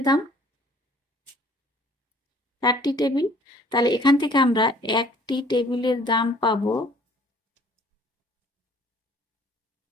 দাম, 4টি টেবিল। তাহলে এখান থেকে আমরা একটি টেবিলের দাম পাবো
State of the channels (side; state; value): both; normal; correlation 0.55